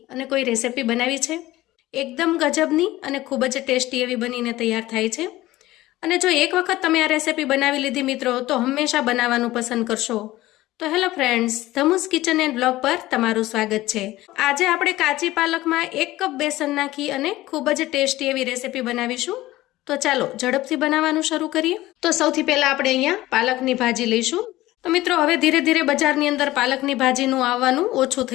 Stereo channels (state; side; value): quieter; right; 17.0 dB